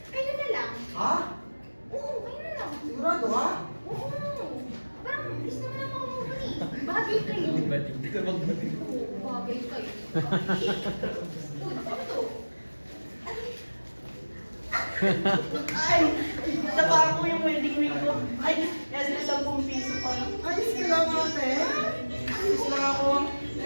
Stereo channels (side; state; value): both; inverted; correlation -1.00